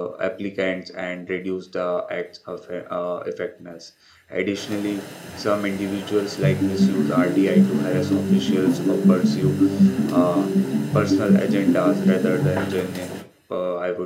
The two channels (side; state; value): both; identical; correlation 1.00